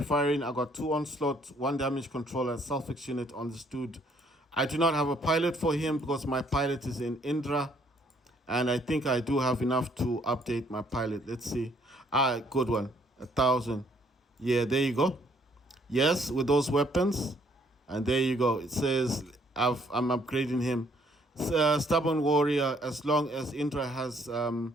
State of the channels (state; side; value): normal; both; correlation 0.65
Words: I got 2 onslaught, 1 damage controller, self-fix unit on this dude. I do not have a pilot for him because my pilot is in Indra. And I think I do have enough to update my pilot. Let's see. Good one. 1,000. Yeah, there you go. Yes, with those weapons. And there you go. It says I'm upgrading him. Stubborn warrior, as long as Indra has